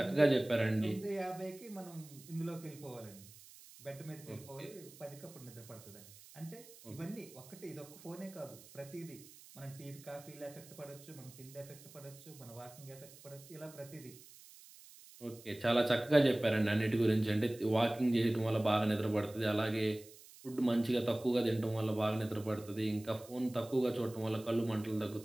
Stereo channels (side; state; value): right; noise; hiss, 20 dB below the sound